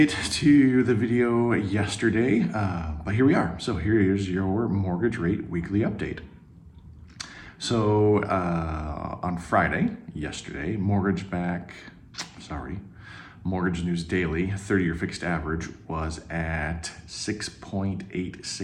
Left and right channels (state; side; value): identical; both; correlation 1.00